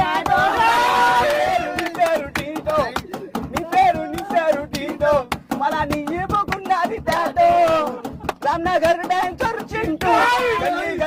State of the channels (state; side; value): identical; both; correlation 1.00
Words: నీ పేరు టీటో మళ్ళా నీ ఇప్పుకున్నది టాటో రామ్నగర్ డాన్సర్ చింటూ